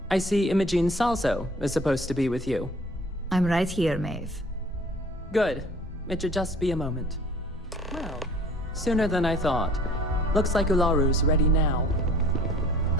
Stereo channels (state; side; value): normal; both; correlation 0.51